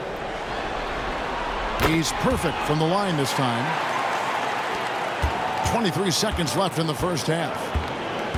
He's perfect from the line this time. 23 seconds left in the first half.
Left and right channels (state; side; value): identical; both; correlation 1.00